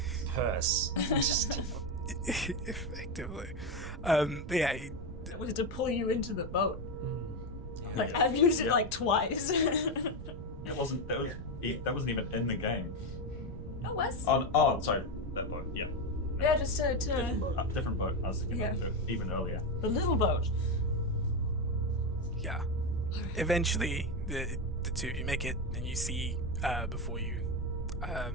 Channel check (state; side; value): noise; right; rumble, 11 dB below the sound